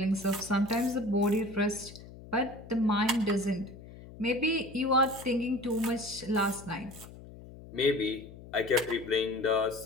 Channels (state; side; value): noise; left; hum, 17 dB below the sound